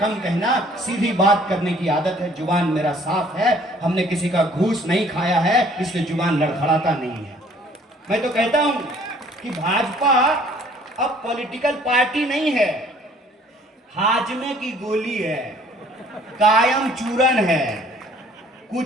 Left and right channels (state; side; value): normal; both; correlation 0.57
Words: कहना। सीधी बात करने की आदत है, जुबान मेरा साफ है, हमने किसी का घूस नहीं खाया है, इसलिए जुबान लड़खड़ाता नहीं है। मैं तो कहता हूं कि भाजपा अब पॉलिटिकल पार्टी नहीं है, हाजमे की गोली है, कायम चूरन है।